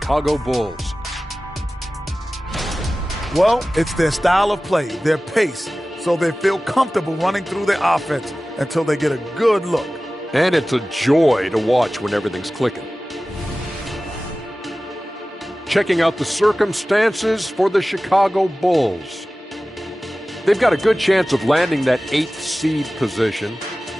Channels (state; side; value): normal; both; correlation 0.97